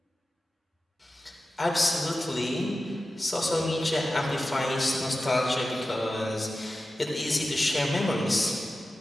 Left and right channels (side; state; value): both; normal; correlation 0.93